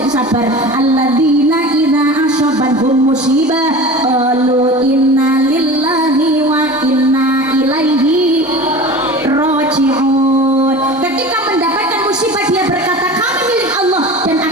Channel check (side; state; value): both; normal; correlation 0.35